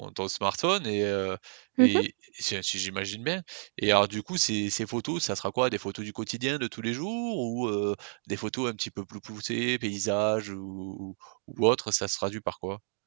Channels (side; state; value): left; silent; digital silence